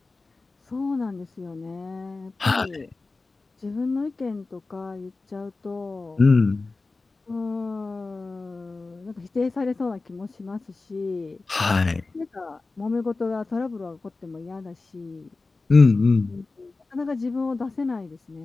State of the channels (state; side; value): quieter; right; 3.6 dB